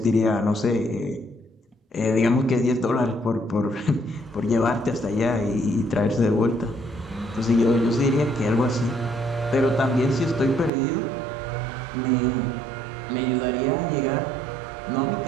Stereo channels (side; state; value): left; drops out; at 10.7 s